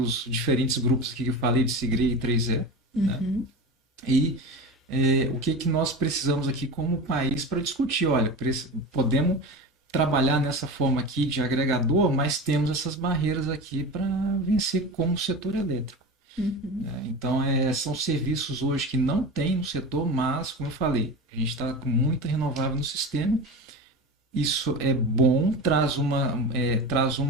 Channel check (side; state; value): both; normal; correlation 0.28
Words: diferentes grupos aqui que eu falei de Sigre e 3E, né? Uhum. E o que nós precisamos aqui como país para discutir. Olha, podemos trabalhar nessa forma aqui de agregador, mas temos essas barreiras aqui para vencer como setor elétrico. Uhum. Então, são serviços hoje que não tem no setor, mas, como eu falei, a gente está com muita renovável no sistema. Isso é bom, traz